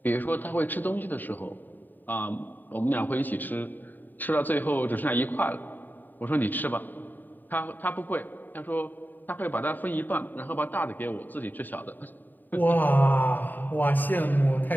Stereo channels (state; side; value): late; right; 0.089 ms